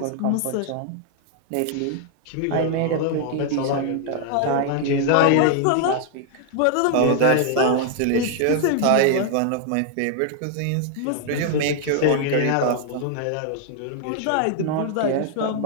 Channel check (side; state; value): both; different; correlation 0.00